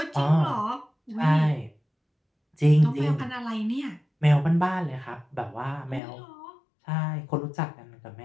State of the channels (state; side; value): drops out; right; at 6.0 s